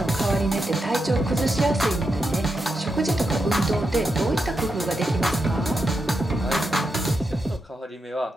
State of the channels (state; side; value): normal; both; correlation 0.86